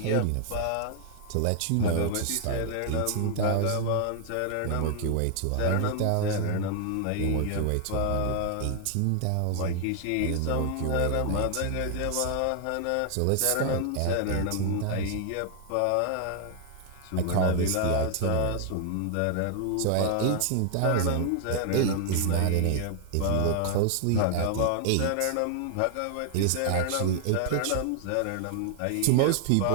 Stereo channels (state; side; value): different; both; correlation 0.00